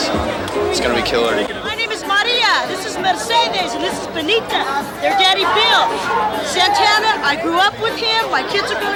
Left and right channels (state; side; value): identical; both; correlation 1.00